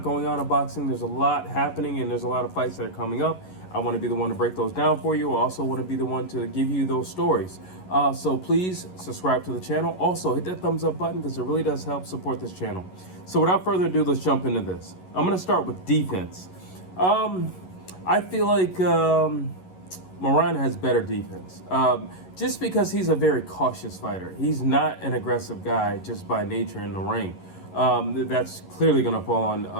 going on in boxing. There's a lot happening, and there's a lot of fights that are coming up. I want to be the one to break those down for you. I also want to be the one to give you those stories. So please subscribe to the channel. Also, hit that thumbs up button because it really does help support this channel. So without further ado, let's jump into this. I'm going to start with defense. I feel like Moran has better defense, just because he's a very cautious fighter. He's not an aggressive guy just by nature in the ring. That's clearly going to fall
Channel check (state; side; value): late; right; 11 ms